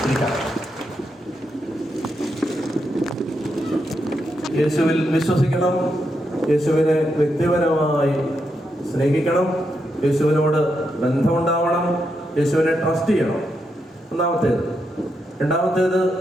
ഇരിക്കാം. യേശുവിൽ വിശ്വസിക്കണം, യേശുവിനെ വ്യക്തിപരമായി സ്നേഹിക്കണം, യേശുവിനോട് ബന്ധമുണ്ടാവണം, യേശുവിനെ ട്രസ്റ്റ് ചെയ്യണം. ഒന്നാമത്തേത്. രണ്ടാമത്തേത്,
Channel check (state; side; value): normal; both; correlation 0.83